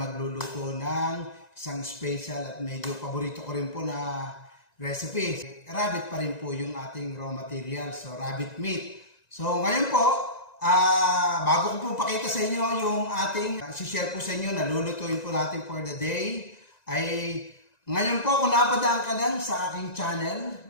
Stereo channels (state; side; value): late; right; 1.9 ms